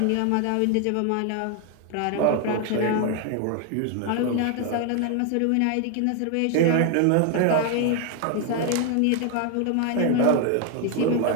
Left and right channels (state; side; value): different; both; correlation 0.01